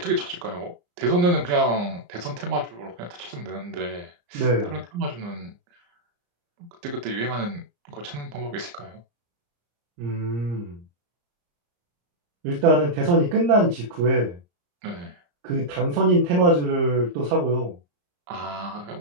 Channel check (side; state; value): left; late; 34 ms